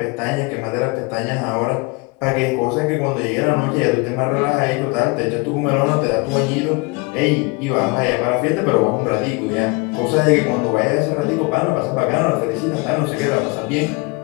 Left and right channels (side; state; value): right; quieter; 27.4 dB